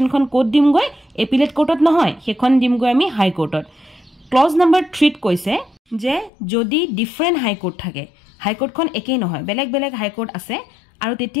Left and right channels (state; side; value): drops out; right; at 6.3 s